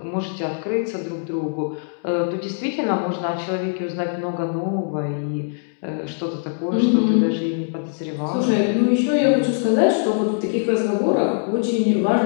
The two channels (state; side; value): silent; right; 64 dB below the other